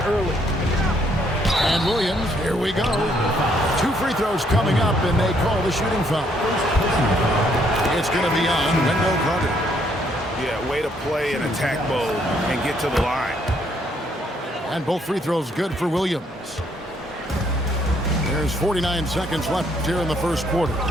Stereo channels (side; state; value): both; normal; correlation 0.69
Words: early. And Williams, here we go. 2 free throws coming up, and they call the shooting foul. It's going to be on Wendell Carter. Yeah, way to play in attack mode and get to the line. And both free throws good for Williams. There's 49 seconds left here in the first quarter.